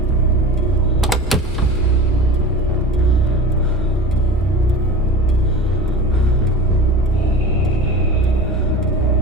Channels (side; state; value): both; normal; correlation 0.34